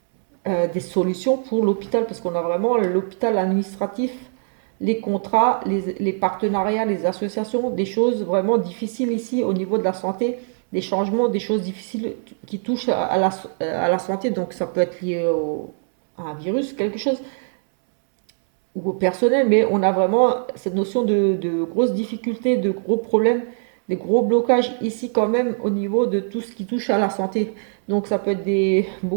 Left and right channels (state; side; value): silent; left; 64 dB below the other